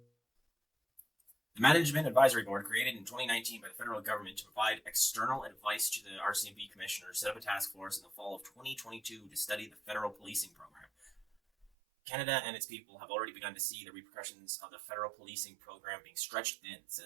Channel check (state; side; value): drops out; left; at 11.7 s